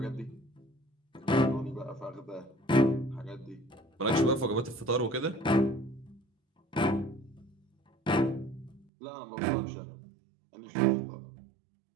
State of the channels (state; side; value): drops out; left; at 8.8 s